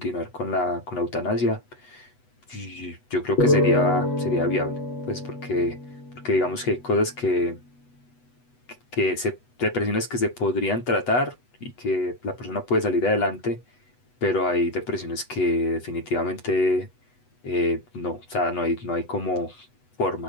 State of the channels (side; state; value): right; late; 8.1 ms